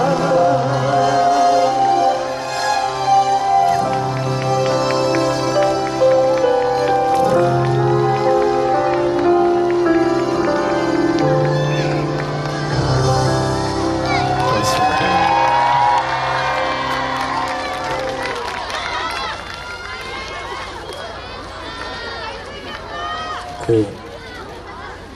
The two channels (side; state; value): both; identical; correlation 1.00